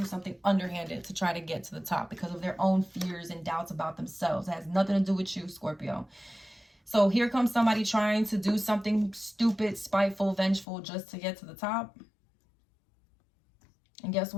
something underhanded to try to get to the top because of their own fears and doubts about themselves. It has nothing to do with you, Scorpio. So here comes somebody trying to do something stupid, spiteful, vengeful just to get to the top. And guess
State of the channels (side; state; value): right; drops out; at 10.7 s